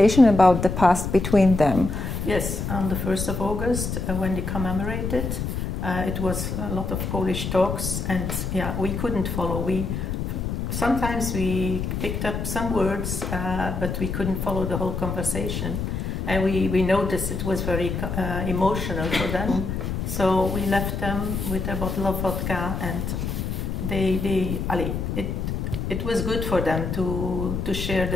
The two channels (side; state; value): left; noise; rumble, 3 dB below the sound